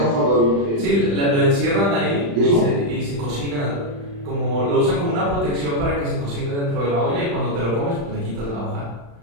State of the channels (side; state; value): left; late; 35 ms